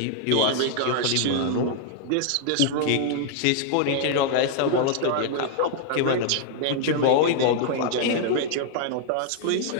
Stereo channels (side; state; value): both; different; correlation -0.01